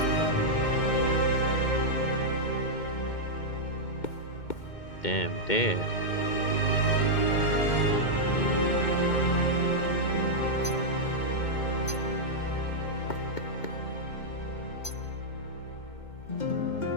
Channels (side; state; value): right; late; 2.2 ms